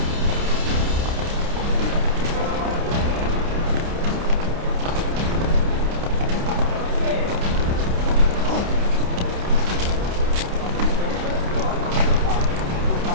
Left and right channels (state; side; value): late; left; 29 ms